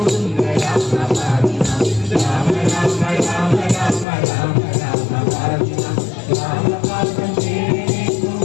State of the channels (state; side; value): drops out; right; at 4.0 s